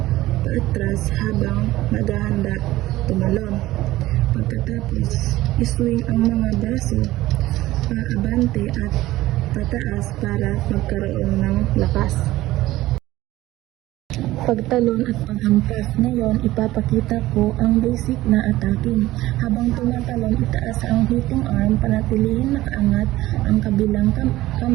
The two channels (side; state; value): left; quieter; 16.6 dB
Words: paatras habang naghahanda tumalon. Pagkatapos, iswing ang mga braso paabante at pataas para magkaroon ng lakas. Pagtalon at paghampas. Ngayon, ipapakita ko ang basic na attacking. Habang tumatalon, itaas ang hitting arm, panatilihin nakaangat ang kabilang